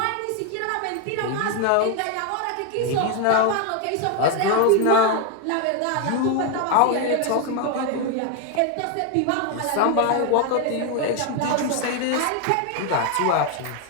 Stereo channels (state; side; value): different; both; correlation 0.01